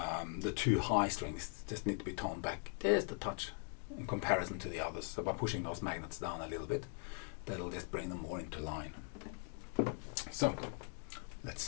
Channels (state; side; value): silent; right; 51 dB below the other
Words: the two high strings just need to be toned back just a touch in comparison to the others. So by pushing those magnets down a little bit, that'll just bring them more into line. So let's